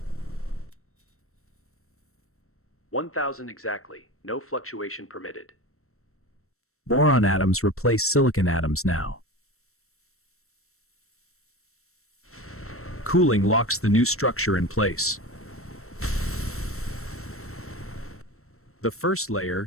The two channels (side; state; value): right; late; 0.63 ms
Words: 1,000 exactly, no fluctuation permitted. Boron atoms replace silicon atoms now. Cooling locks the new structure in place. The first